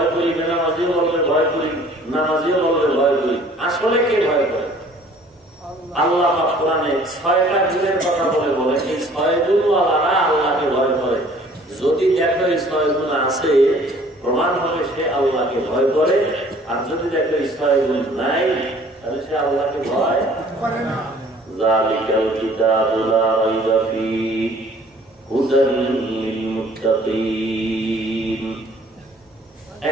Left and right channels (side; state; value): both; normal; correlation 0.54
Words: করি, বেনামাজিও বলবে ভয় করি, নামাজিও বলবে ভয় করি। আসলে কে ভয় করে? আল্লাহ পাক কোরআনে 6টা গুণের কথা বলে এই 6 গুণওয়ালারা আল্লাহকে ভয় করে। যদি দেখো এই 6 গুণ আছে, প্রমাণ হবে সে আল্লাহকে ভয় করে। আর যদি দেখো এই 6 গুণ নাই, তাহলে সে আল্লাহকে ভয় করে না। যালিকাল কিতাবু লা রাইবা ফীহি হুদাল লিল মুত্তাকিন।